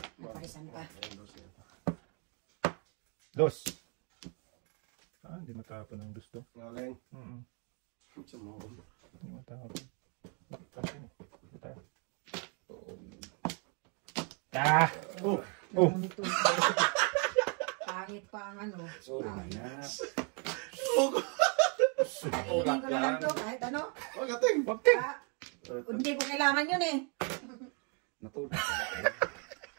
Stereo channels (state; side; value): quieter; left; 37.3 dB